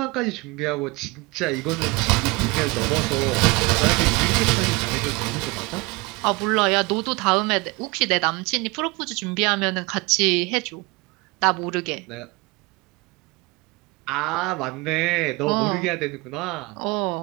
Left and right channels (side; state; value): left; quieter; 25.1 dB